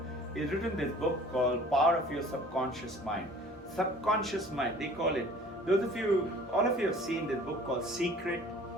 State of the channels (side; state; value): both; normal; correlation 0.49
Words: He's written this book called Power of Your Subconscious Mind. Subconscious mind, they call it. All of you have seen this book called Secret,